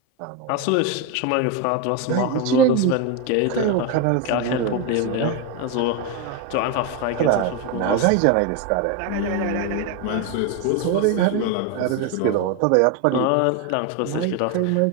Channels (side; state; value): both; different; correlation 0.02